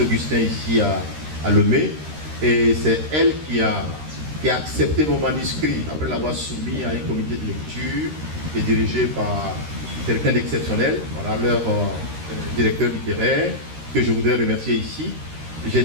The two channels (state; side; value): late; left; 13 ms